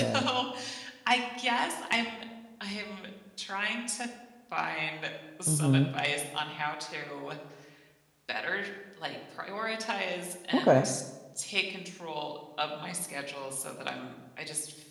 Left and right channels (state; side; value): identical; both; correlation 1.00